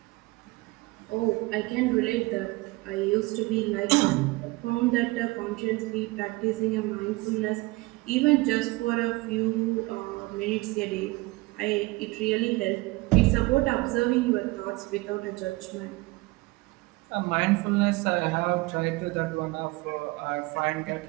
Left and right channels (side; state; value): left; quieter; 22.8 dB